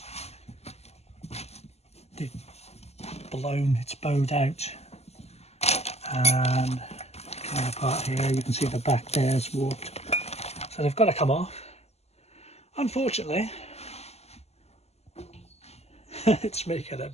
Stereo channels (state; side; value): late; right; 0.30 ms